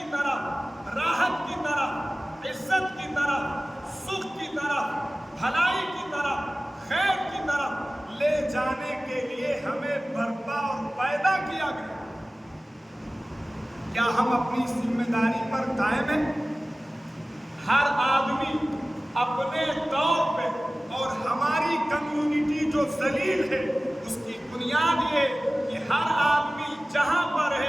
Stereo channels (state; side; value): normal; both; correlation 0.97